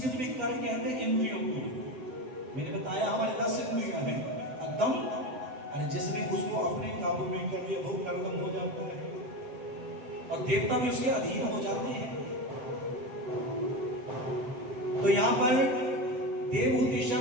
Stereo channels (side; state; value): left; late; 7.8 ms